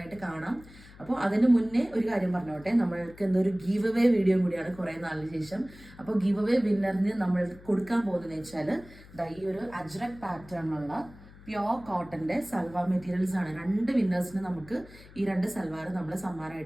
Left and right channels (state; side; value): noise; left; hum, 21 dB below the sound